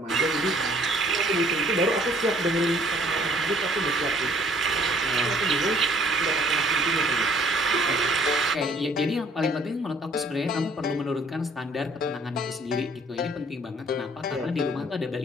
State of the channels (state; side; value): normal; both; correlation 0.59